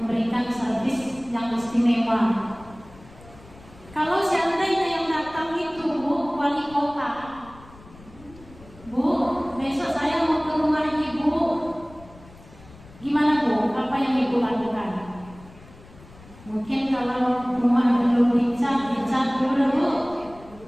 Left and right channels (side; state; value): left; noise; rumble, 22 dB below the sound